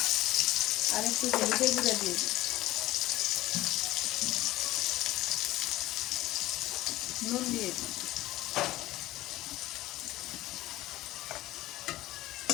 আর একটু হলুদের গুঁড়া দিয়ে দিই। নুন দিয়ে দিই।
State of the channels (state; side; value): quieter; right; 16.9 dB